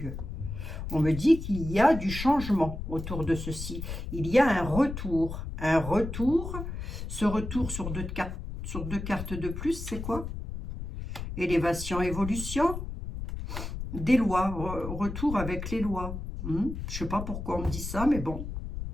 On me dit qu'il y a du changement autour de ceci. Il y a un retour. Un retour. Ce retour sur deux cartes de plus, c'est quoi? Élévation, évolution. Des lois. Retour avec les lois. Je ne sais pas pourquoi on me dit ça, mais bon.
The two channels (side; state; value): left; noise; rumble, 7 dB below the sound